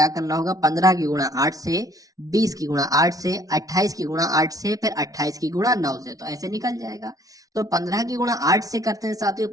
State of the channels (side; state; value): left; late; 0.18 ms